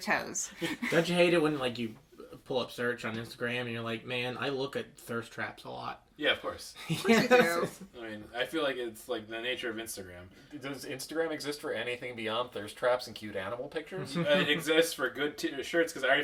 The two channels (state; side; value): identical; both; correlation 1.00